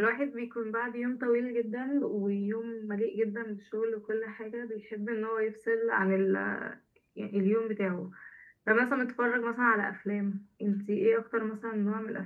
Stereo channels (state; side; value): identical; both; correlation 1.00